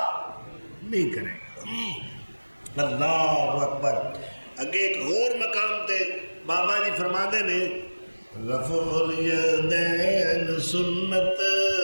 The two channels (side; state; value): both; inverted; correlation -1.00